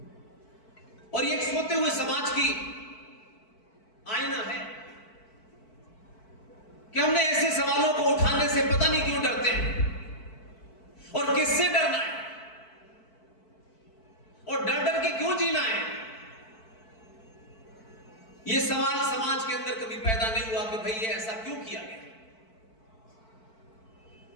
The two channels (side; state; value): right; late; 4.5 ms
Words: और ये एक सोते हुए समाज की आईना है कि हमने ऐसे सवालों को उठाने से पता नहीं क्यों डरते हैं और किससे डरना है और डर डर के क्यों जीना है। यह सवाल समाज के अंदर कभी पैदा नहीं हुआ कि भाई ये ऐसा क्यों किया गया,